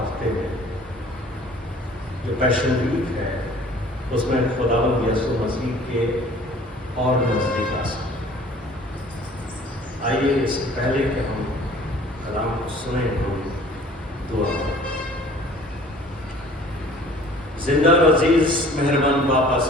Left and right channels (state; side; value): normal; both; correlation 0.51